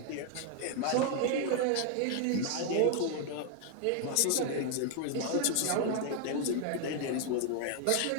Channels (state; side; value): different; both; correlation 0.00